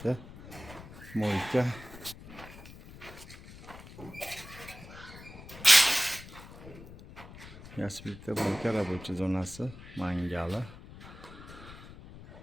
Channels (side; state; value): left; noise; rumble, 16 dB below the sound